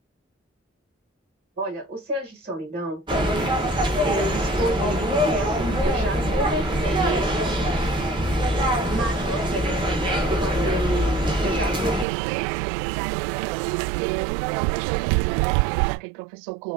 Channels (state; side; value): drops out; left; at 12.1 s